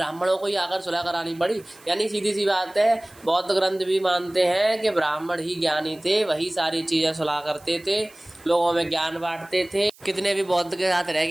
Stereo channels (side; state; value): right; noise; hiss, 26 dB below the sound